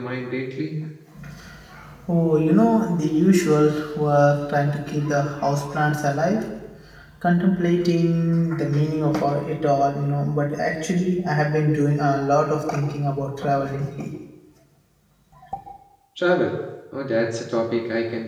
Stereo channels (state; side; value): identical; both; correlation 1.00